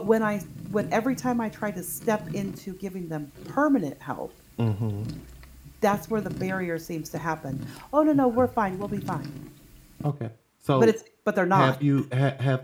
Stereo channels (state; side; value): identical; both; correlation 1.00